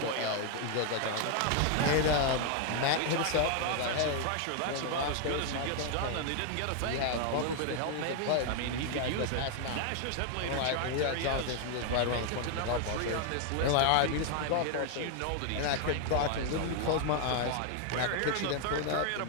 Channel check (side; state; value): both; different; correlation 0.00